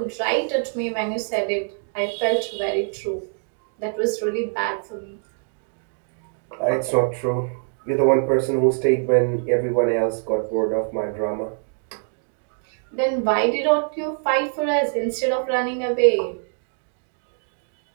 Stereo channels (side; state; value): left; silent; 62 dB below the other